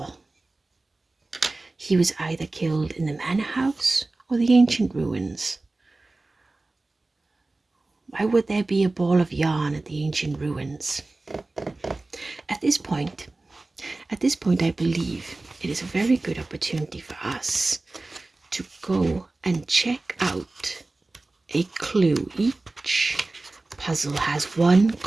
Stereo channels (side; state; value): left; quieter; 3.2 dB